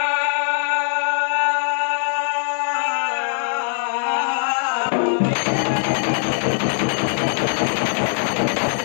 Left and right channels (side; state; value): right; silent; digital silence